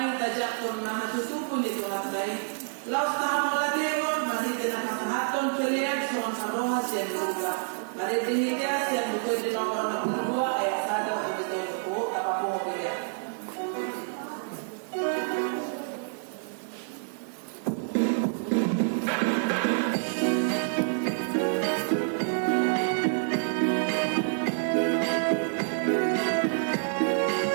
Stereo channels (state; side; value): silent; left; digital silence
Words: tajak pun mahatutupu ni Tuhan dai. Laus tahamu ladero, mari dengan haton kelian suan haroha sian luka. Mari dihidya sian luka di nomor 62 ayat 1 sampai 10 apa pun kelian.